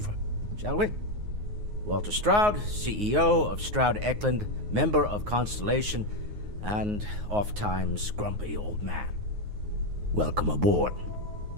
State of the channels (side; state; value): left; late; 9.5 ms